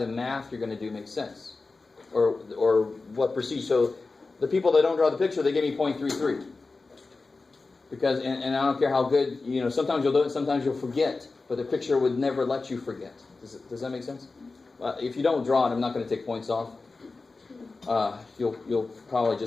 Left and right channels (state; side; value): quieter; right; 3.8 dB